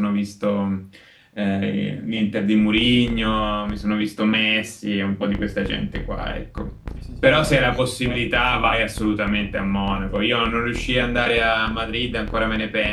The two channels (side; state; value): both; identical; correlation 1.00